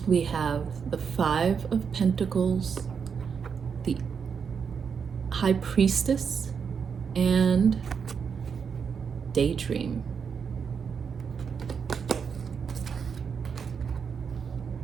we have the Five of Pentacles, the High Priestess, and Daydream.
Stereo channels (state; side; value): quieter; left; 6.4 dB